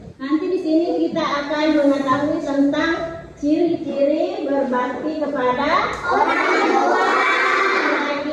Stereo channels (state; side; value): identical; both; correlation 1.00